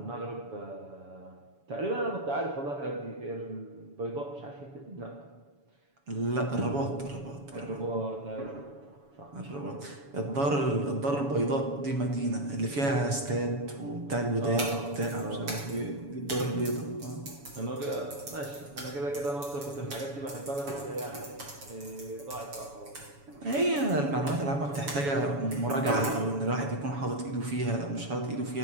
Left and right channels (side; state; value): left; late; 7.1 ms